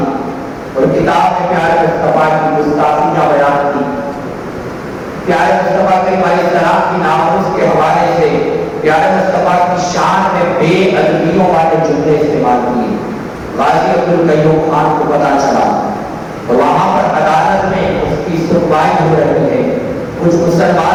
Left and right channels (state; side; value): identical; both; correlation 1.00